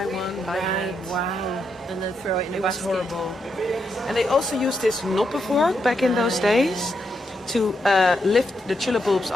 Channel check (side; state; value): both; normal; correlation 0.81